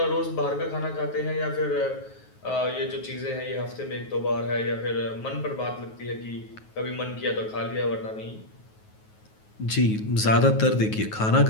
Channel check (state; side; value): late; right; 9.4 ms